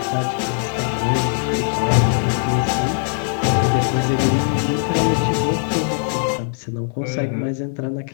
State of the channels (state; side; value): silent; right; digital silence